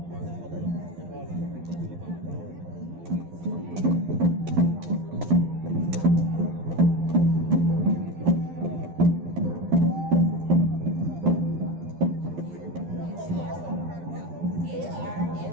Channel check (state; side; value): late; left; 12 ms